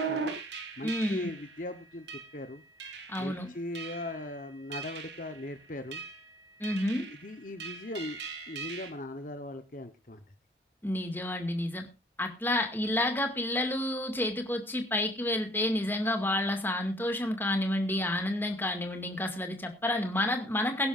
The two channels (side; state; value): both; normal; correlation 0.57